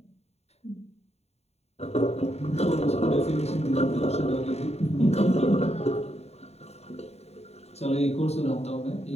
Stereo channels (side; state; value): right; late; 0.31 ms